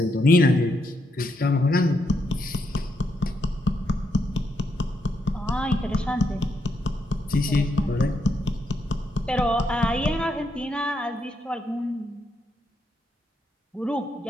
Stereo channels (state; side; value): normal; both; correlation 0.79